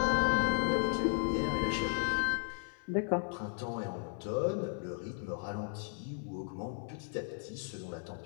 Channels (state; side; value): silent; right; 54 dB below the other